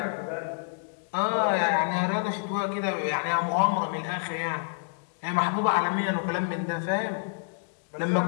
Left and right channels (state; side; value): silent; right; digital silence